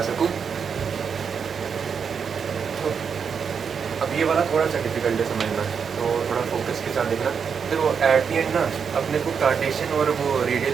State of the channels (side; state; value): left; quieter; 6.5 dB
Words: सकूँ। तो अब ये वाला थोड़ा सा डिफिकल्ट है समझना, तो थोड़ा फोकस के साथ देखना। फिर वो एट दी एंड ना अपने को कार्टेशियन और वो रेडियल